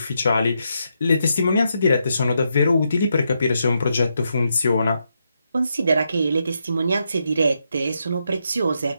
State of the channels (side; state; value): both; inverted; correlation -0.82